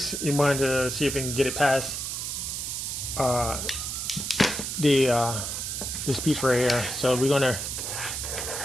you want to see if you can get it past this piece right here. So we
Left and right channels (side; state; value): right; noise; hiss, 4 dB below the sound